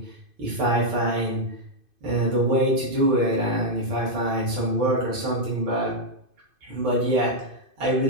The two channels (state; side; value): late; left; 2.5 ms